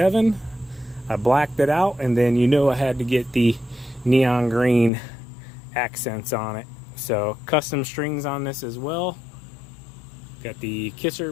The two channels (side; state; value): right; drops out; at 4.9 s